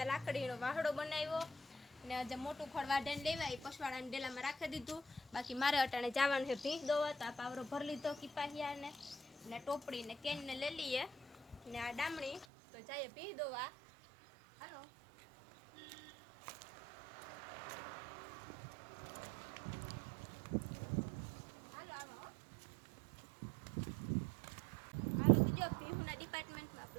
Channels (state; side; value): drops out; left; at 12.5 s